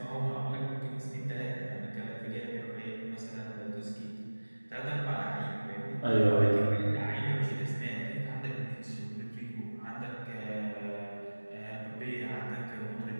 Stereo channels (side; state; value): both; inverted; correlation -1.00